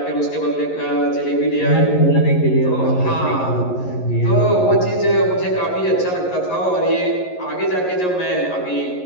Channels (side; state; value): right; late; 11 ms